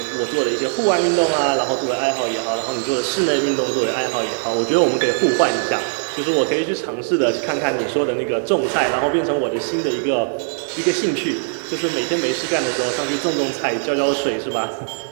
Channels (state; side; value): silent; left; digital silence